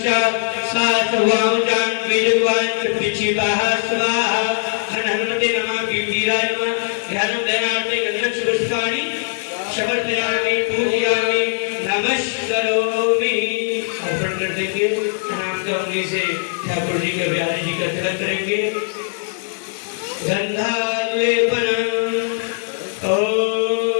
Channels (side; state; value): right; silent; 66 dB below the other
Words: सात्वां बीजद्वान् पिचिताः स्वाहा। हनुमते नमः। वीराय नमः। ध्यानं ध्यानार्थे गंधर्व पुष्पाणि समर्पयामि पूजयामि नमस्करोमि। अर्पण कर देंगे। प्रणाम करने से ठाकुर जी का बिहारी जी का तिलक करेंगे। गंधालेपनम्